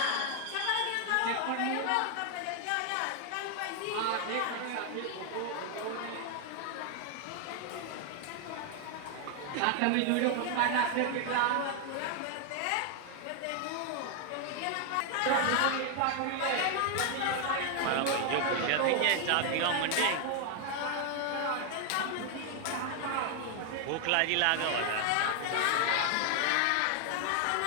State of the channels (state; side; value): different; both; correlation 0.00